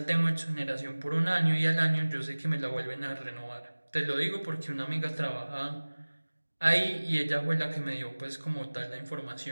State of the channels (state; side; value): inverted; both; correlation -1.00